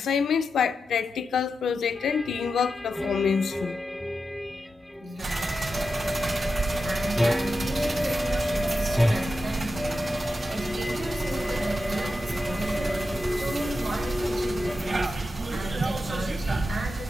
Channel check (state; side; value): normal; both; correlation 0.89